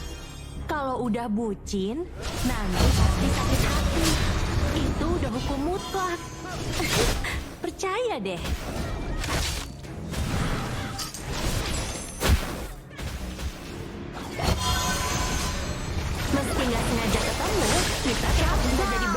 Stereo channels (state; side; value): identical; both; correlation 1.00